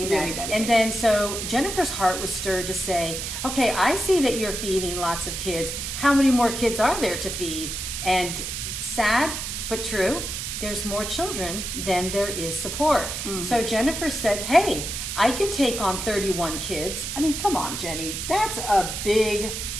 really that. dedicated. And then so Jennifer's heart was stirred to say, okay, I see that you're feeding lots of kids. How many more kids are there to feed? And sad but true, there's more children than there is support. So Jennifer said, hey, I can take on 31 kids. I mean, come on, Jenny, that's a big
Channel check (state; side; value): noise; right; hiss, 5 dB below the sound